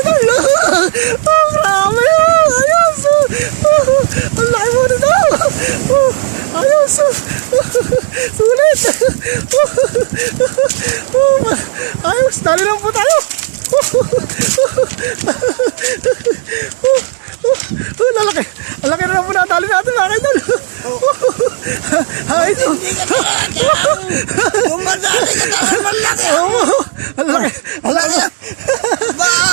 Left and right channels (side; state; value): left; silent; digital silence